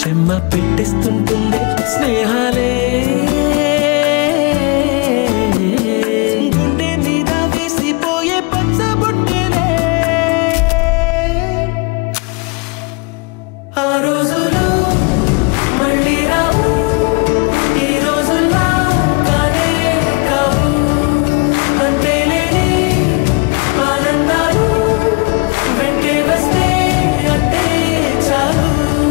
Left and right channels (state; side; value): quieter; right; 29.9 dB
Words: చెమ్మ పెట్టిస్తుంటుందే స్నేహాలే. గుండె మీద వేసిపోయే పచ్చబొట్టెలే. ఆ రోజులు మళ్ళీ రావు, ఈ రోజుల్లా కానే కావు. అంతేలేని ఆనందాలు వెంటే వస్తే అంటే చాలు.